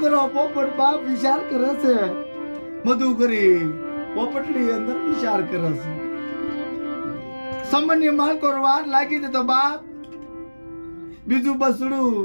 પોપટ બાપ વિચાર કરે છે. મધુકરી પોપટની અંદર વિચાર કરે છે. સામાન્ય માલકો વાર લાગી દે તો બાપ બીજું બસડું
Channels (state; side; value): inverted; both; correlation -1.00